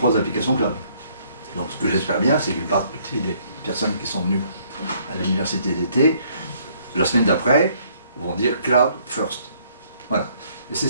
applications cloud. Donc ce que j'espère bien, c'est qu'une partie des personnes qui sont venues à l'université d'été, la semaine d'après, vont dire Cloud First. Voilà. Et c'est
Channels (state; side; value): inverted; both; correlation -0.64